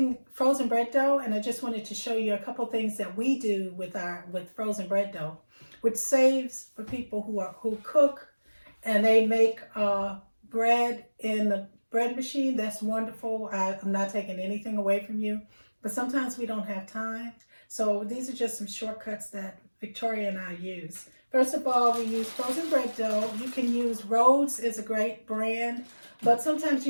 frozen bread dough, and I just wanted to show you a couple things that we do with frozen bread dough, which saves for people who cook and they make bread in the bread machine. That's wonderful. I'm not taking anything away from you, but sometimes we don't have time. So these are just some shortcuts that Victoria and I use. First of all, we use frozen bread dough. You can use Rhodes, is a great brand, but sometimes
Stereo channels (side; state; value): both; inverted; correlation -1.00